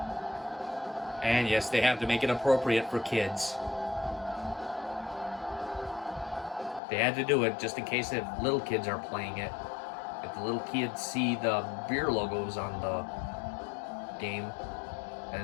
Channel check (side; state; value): right; drops out; at 6.8 s